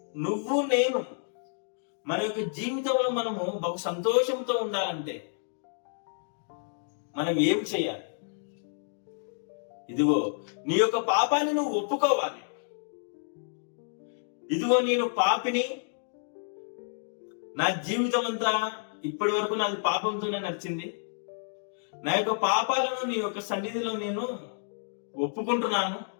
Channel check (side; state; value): right; silent; digital silence